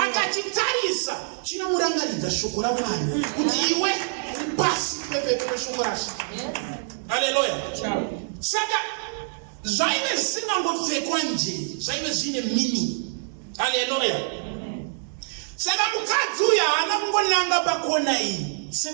akachitarisa chinomurangaridza shoko raMwari kuti iwe pasi pepe shoko raShe. Hallelujah. Saka zvaive zvisingangopfekwa nje, zvaive zvine meaning. Hallelujah. Saka mukadzi uyu haana kungonanga pakona iyi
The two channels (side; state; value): left; silent; digital silence